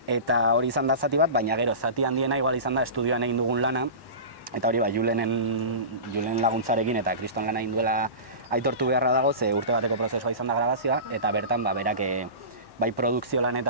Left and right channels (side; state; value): right; late; 1.1 ms